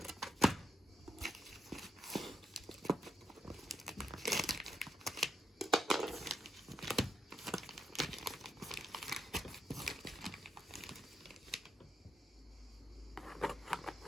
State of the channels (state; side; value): normal; both; correlation 0.82